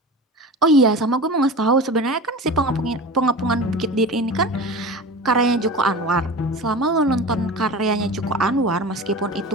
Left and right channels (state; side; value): normal; both; correlation 0.33